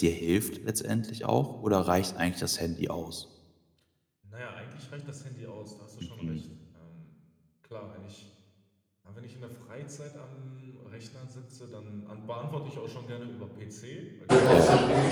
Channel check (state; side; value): identical; both; correlation 1.00